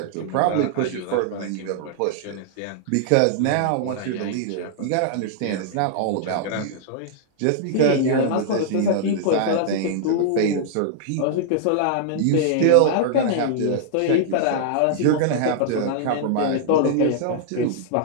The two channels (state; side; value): different; both; correlation -0.01